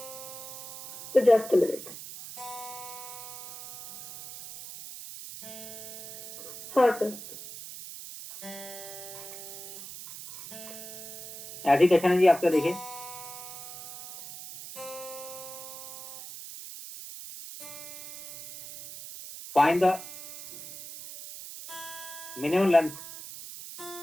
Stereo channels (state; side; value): noise; right; hiss, 11 dB below the sound